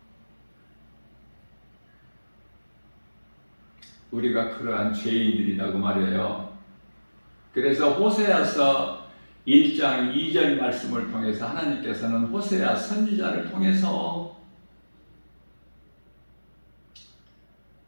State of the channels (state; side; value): inverted; both; correlation -1.00